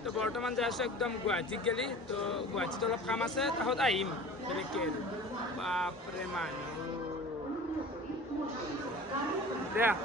তো বৰ্তমান যাই আছো একদম গুৱাহাটীত গেলি তো গুৱাহাটীত অলপ কাম আছে তাহত আহিম বেলেগকে বাপৰে মানুহ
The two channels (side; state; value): both; normal; correlation 0.40